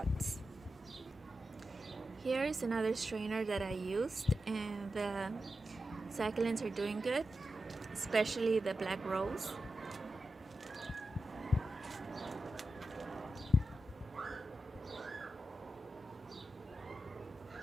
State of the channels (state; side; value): normal; both; correlation 0.91